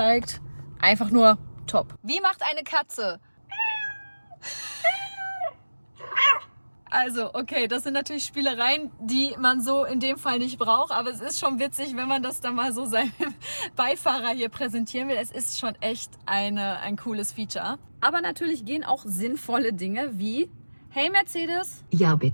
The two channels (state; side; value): inverted; both; correlation -1.00